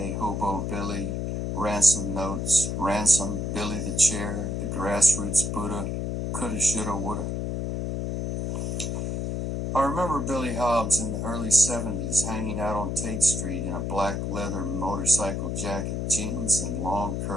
Hobo Billy, ransom notes, ransom, Billy the Chair, the grassroots Buddha, coulda, shoulda, woulda. I remember Billy Hobbs in the early 70s hanging out on Tate Street in a black leather motorcycle jacket, jeans, and long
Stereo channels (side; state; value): left; noise; hum, 1 dB below the sound